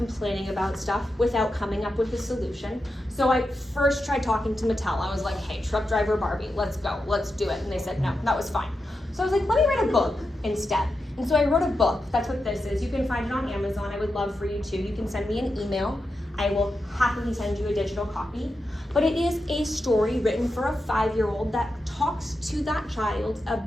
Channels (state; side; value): normal; both; correlation 0.88